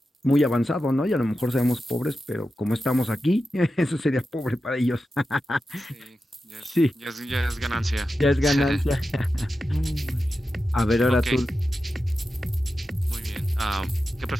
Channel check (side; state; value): both; normal; correlation 0.91